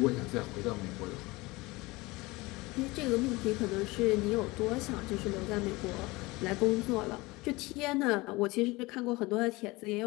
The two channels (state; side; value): quieter; right; 22.4 dB